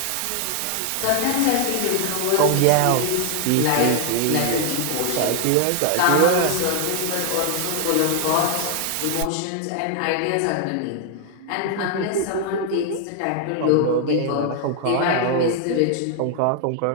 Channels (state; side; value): different; both; correlation 0.00